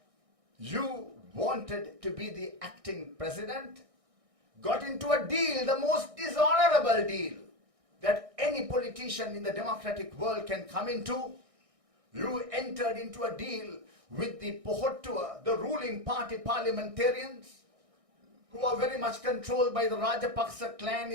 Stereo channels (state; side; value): late; left; 1.6 ms